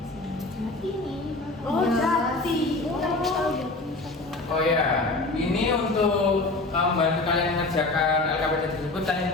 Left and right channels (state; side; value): quieter; right; 3.1 dB